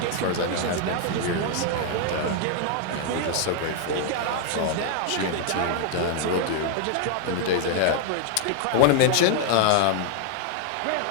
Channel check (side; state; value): both; different; correlation 0.00